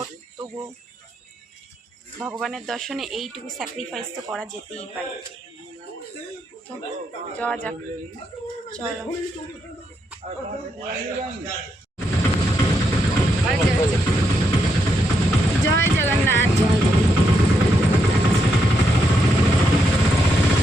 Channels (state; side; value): normal; both; correlation 0.80